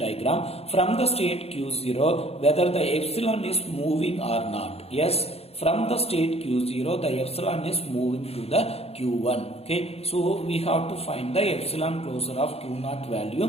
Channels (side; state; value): right; late; 0.29 ms